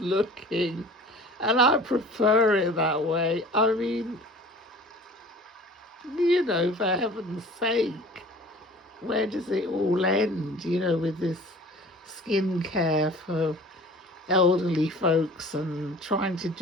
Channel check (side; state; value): both; normal; correlation 0.44